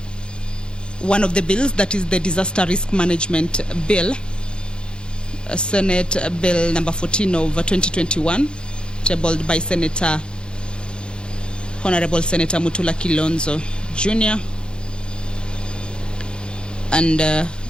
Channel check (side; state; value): right; late; 0.051 ms